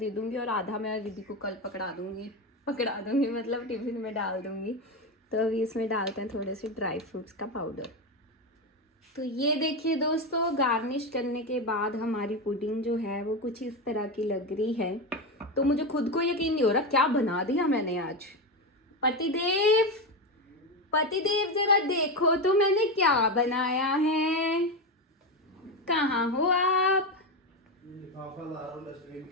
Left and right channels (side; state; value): both; normal; correlation 0.15